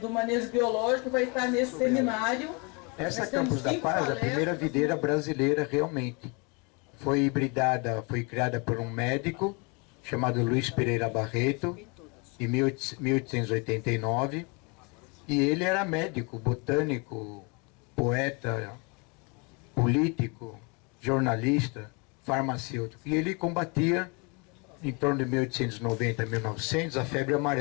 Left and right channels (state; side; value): quieter; right; 31.4 dB